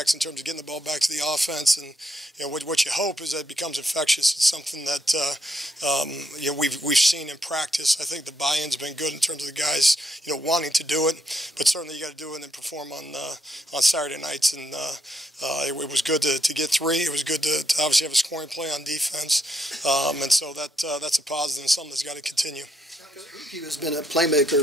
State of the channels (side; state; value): both; normal; correlation 0.77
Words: in terms of getting the ball back to the offense, and what you hope is that it becomes infectious. It's something that we've seen in practice. I think the buy-in's been good in terms of the guys wanting to do it, but certainly you got to do it and perform on Saturday nights, and it was good to get three. It was good to obviously have a scoring play on defense, and so that's a positive and something that's got to continue. He has been a